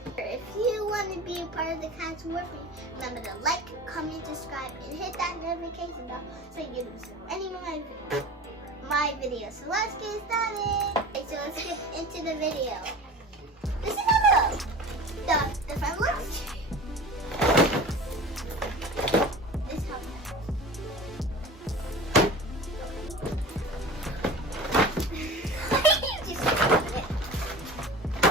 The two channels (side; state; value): both; normal; correlation 0.36